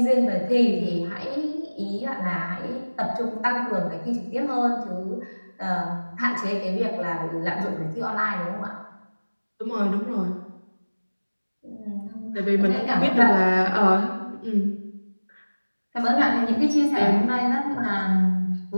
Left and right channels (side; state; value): both; inverted; correlation -1.00